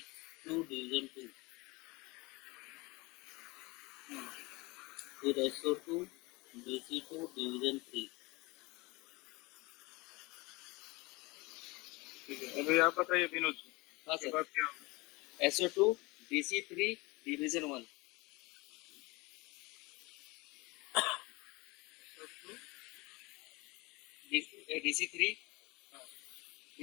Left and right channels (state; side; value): quieter; right; 24.1 dB